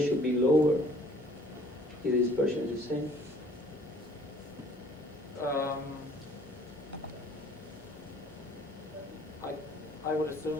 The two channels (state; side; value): normal; both; correlation 0.56